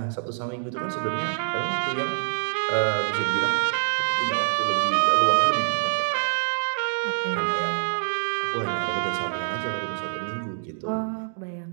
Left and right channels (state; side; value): silent; left; digital silence